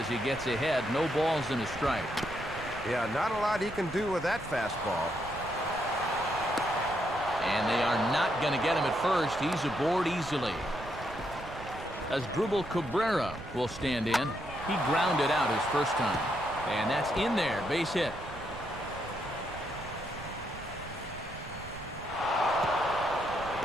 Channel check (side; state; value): right; noise; rumble, 14 dB below the sound